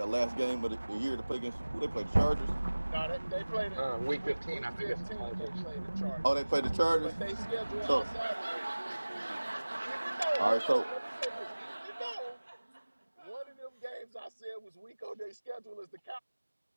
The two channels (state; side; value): inverted; both; correlation -1.00